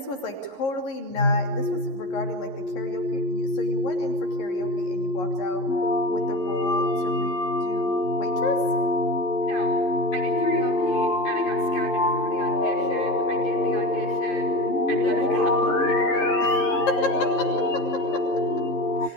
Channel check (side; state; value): right; late; 11 ms